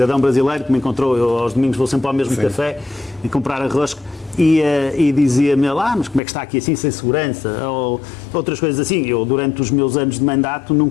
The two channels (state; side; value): drops out; right; at 6.2 s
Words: brasileiro que me encontrou, eu aos domingos vou sempre ao mesmo café e comprar arroz, e dizia-me, mas como é que está aqui assim, sem segurança? Ou outras coisas assim. Eu, durante os meus anos de mandato,